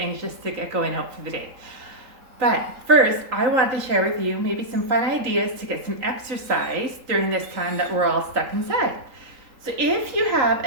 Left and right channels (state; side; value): late; left; 3.8 ms